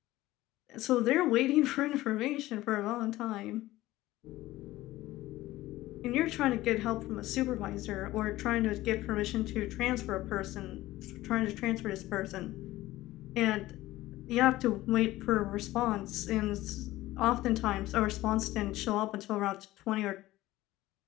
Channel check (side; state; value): right; quieter; 16.8 dB